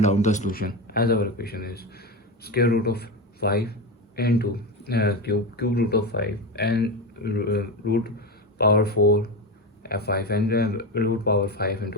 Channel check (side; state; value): both; normal; correlation 0.18